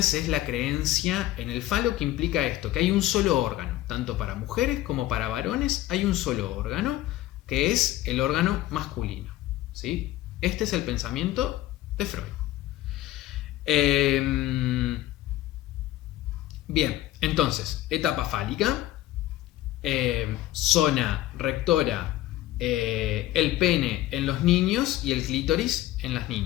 es la creencia en el falo, que implica esto, que hay un solo órgano, tanto para mujeres como para varones hay un solo órgano, que es el órgano masculino, ¿sí? Este es el pensamiento de Freud. Bien, entonces, etapa fálica, zona rectora, el pene en los niños y el clítoris en las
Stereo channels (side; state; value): right; quieter; 15.2 dB